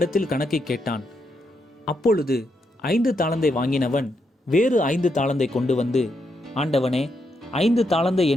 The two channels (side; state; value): both; normal; correlation 0.80